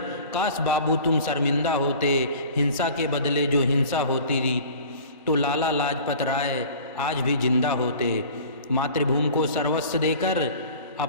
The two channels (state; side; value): inverted; both; correlation -0.43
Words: काश बाबू तुम शर्मिंदा होते। हिंसा के बदले जो हिंसा होती रही तो लाला लाजपत राय आज भी जिंदा होते। मातृभूमि को सर्वस्व देकर